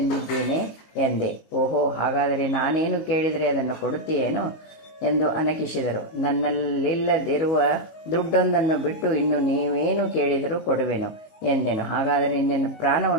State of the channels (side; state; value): right; late; 19 ms